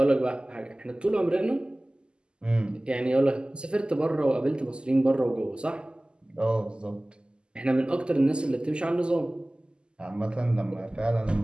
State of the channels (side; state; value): left; late; 0.049 ms